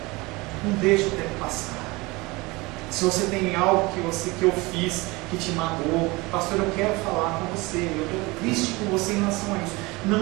Não deixe o tempo passar. Se você tem algo que eu fiz que te magoou, pastor, eu quero falar com você, eu estou triste com você em relação a isso.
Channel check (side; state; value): left; quieter; 23.4 dB